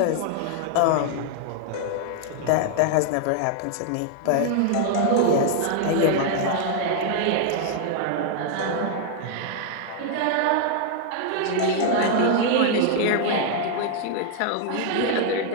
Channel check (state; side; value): different; both; correlation 0.00